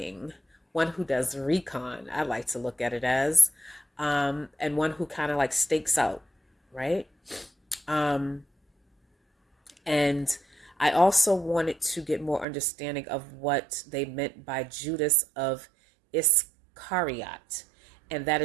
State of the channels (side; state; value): left; drops out; at 12.5 s